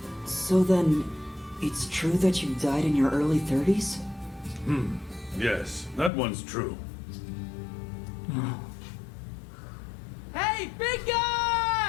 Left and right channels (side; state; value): right; drops out; at 6.1 s